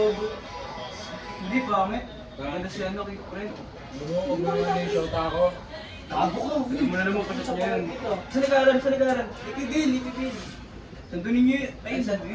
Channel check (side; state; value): both; identical; correlation 1.00